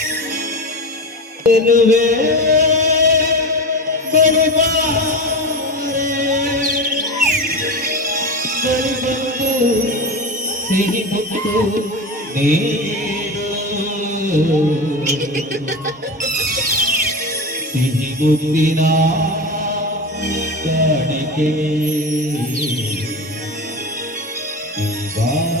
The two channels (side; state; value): both; normal; correlation 0.24